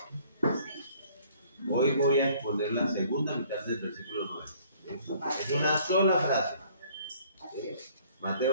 Hoy voy a exponer la segunda mitad del versículo 9. Es una sola frase.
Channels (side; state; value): both; inverted; correlation -0.58